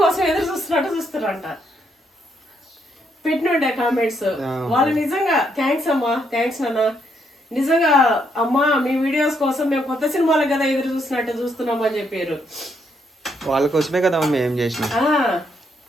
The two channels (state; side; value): normal; both; correlation 0.75